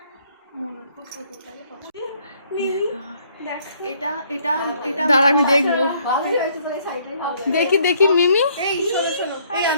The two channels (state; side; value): inverted; both; correlation -0.65